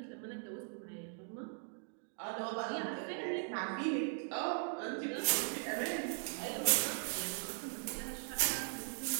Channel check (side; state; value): left; silent; 51 dB below the other